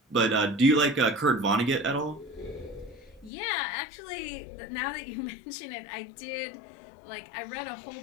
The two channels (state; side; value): drops out; right; at 3.3 s